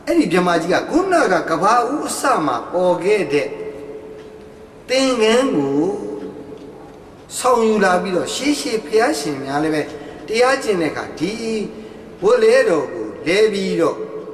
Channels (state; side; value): identical; both; correlation 1.00